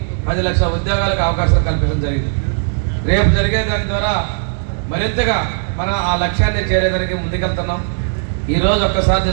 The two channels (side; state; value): left; silent; digital silence